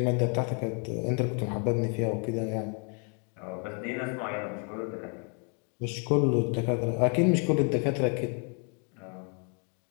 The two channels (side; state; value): right; quieter; 39.1 dB